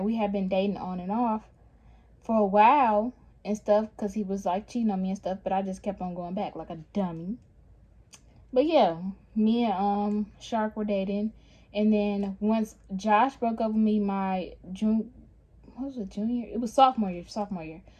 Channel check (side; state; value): both; identical; correlation 1.00